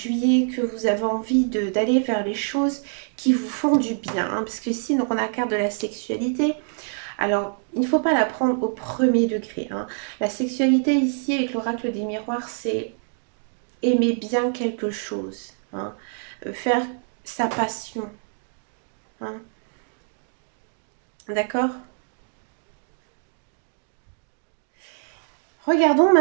que vous avez envie d'aller vers les choses qui vous font du bien. Hein, parce que ici, donc, on a la carte de la sexualité. Alors, il ne faut pas la prendre au premier degré. Hein. La sexualité ici, avec l'oracle des miroirs, c'est aimer bien quelque chose. Hein, faire sa passion. Hein, d'accord? Regardons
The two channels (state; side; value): silent; left; 62 dB below the other